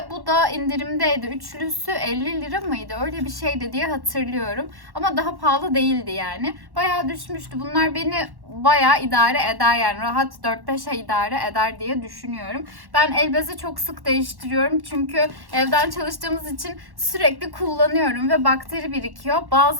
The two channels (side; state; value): left; late; 1.1 ms